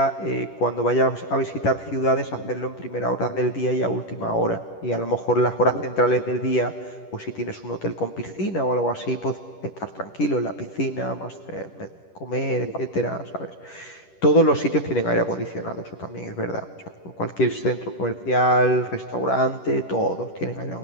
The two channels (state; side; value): late; right; 10 ms